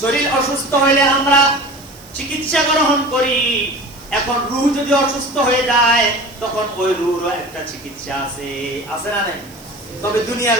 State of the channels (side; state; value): right; noise; hiss, 23 dB below the sound